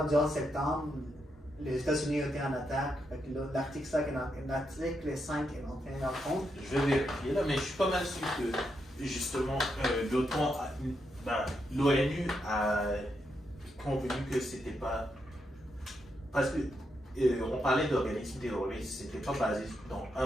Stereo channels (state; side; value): normal; both; correlation 0.82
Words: du 11 septembre, les États-Unis ont été en attaque. L'article 5 est entré en compte. Je vais vérifier là, mais je suis pas mal sûr que justement l'OTAN, l'ONU a convenu que c'était pas. Parce que on parlait d'organismes terroristes, c'était pas basé dans